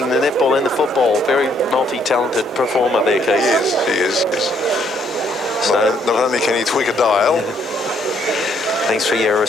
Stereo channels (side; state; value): both; normal; correlation 0.69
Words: the netball and the football. Very multi-talented performer there, Keith. He is. So, not only can he tweak a dial. Thanks for your